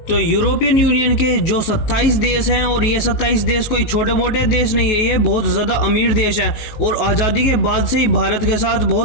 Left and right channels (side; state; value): right; late; 19 ms